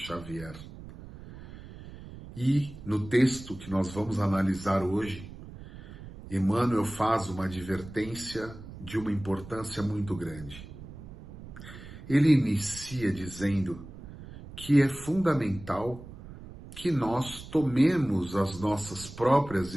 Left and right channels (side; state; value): right; noise; rumble, 15 dB below the sound